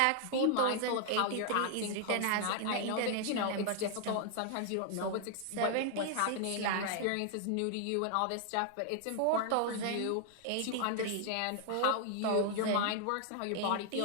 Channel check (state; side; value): different; both; correlation 0.00